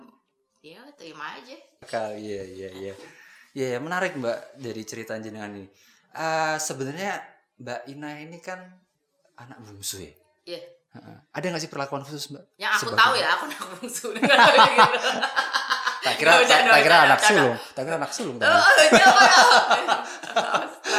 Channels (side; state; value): both; identical; correlation 1.00